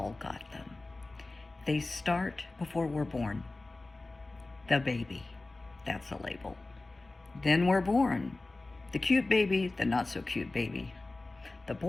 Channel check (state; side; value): quieter; right; 3.1 dB